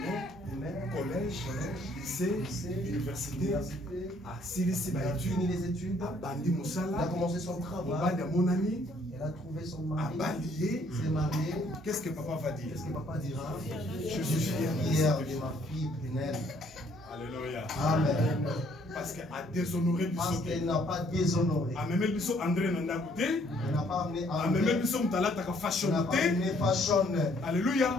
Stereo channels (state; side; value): normal; both; correlation 0.64